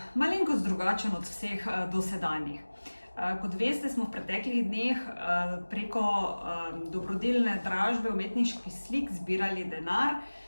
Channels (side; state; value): both; inverted; correlation -1.00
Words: malenkost drugačen od vseh dosedanjih. Kot veste, smo v preteklih dneh preko dobrodelne dražbe umetniških slik zbirali denar